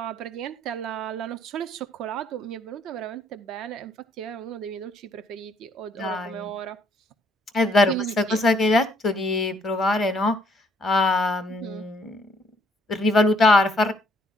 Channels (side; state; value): both; normal; correlation 0.67